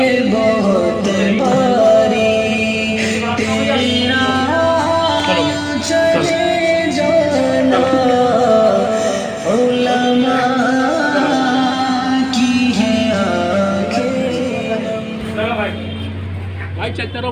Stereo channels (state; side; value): identical; both; correlation 1.00